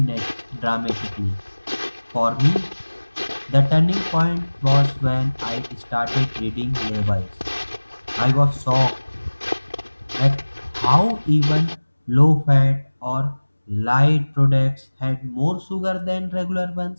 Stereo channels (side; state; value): both; inverted; correlation -1.00